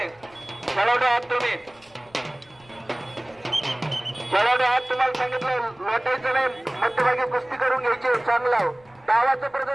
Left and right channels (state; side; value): noise; left; rumble, 29 dB below the sound